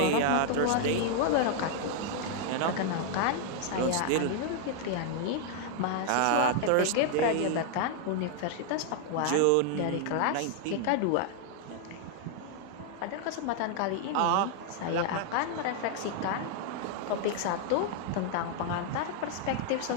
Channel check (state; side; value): different; both; correlation 0.00